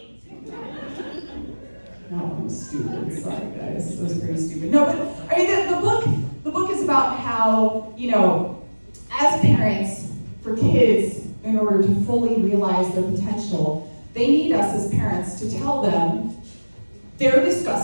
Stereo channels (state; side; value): inverted; both; correlation -1.00